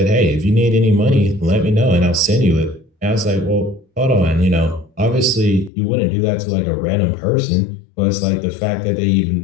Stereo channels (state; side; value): drops out; right; at 5.7 s